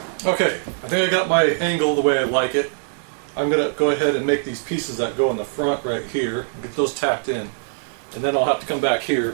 Okay, I think I got my angle the way I like it. I'm going to go ahead and make these pieces that go in the front right here, and get those tacked in. And then I'll have to come back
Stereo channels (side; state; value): left; silent; digital silence